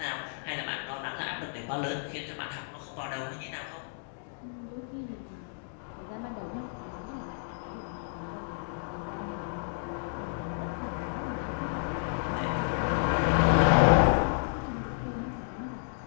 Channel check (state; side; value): silent; right; digital silence